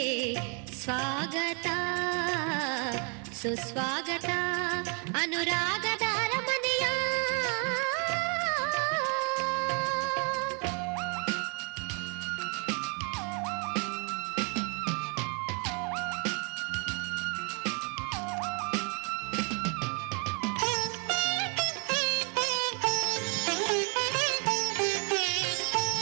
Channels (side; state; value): left; quieter; 35.7 dB